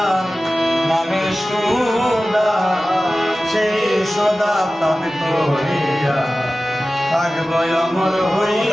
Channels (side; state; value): both; normal; correlation 0.96